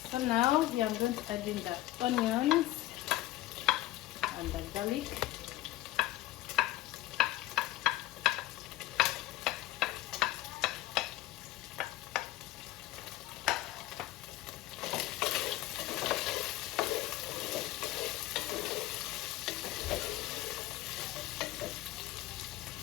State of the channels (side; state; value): right; quieter; 16.2 dB